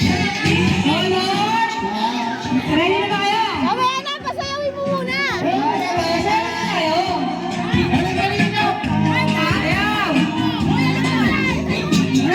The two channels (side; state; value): both; identical; correlation 1.00